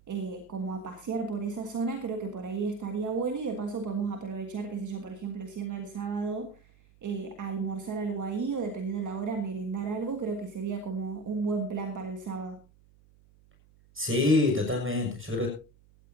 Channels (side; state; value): right; noise; hum, 27 dB below the sound